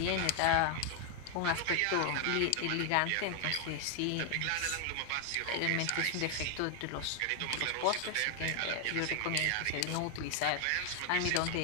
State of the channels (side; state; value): both; different; correlation 0.00